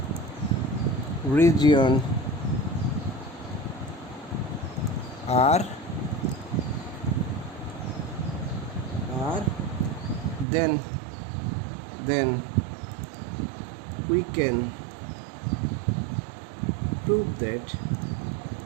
region R, then we can prove that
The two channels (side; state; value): left; drops out; at 10.5 s